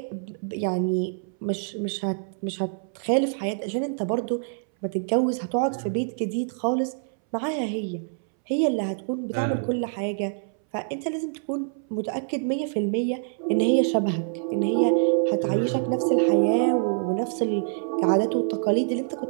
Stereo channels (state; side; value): silent; left; 61 dB below the other